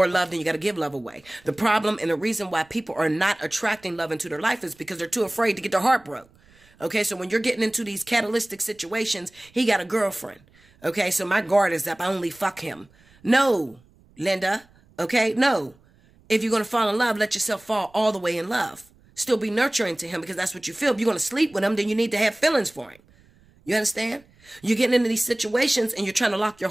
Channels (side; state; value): right; noise; rumble, 30 dB below the sound